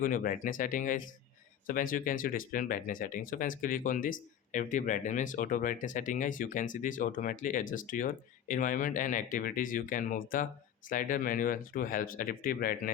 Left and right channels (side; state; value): right; quieter; 9.5 dB